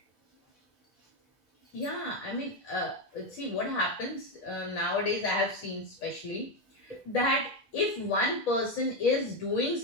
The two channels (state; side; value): normal; both; correlation 0.08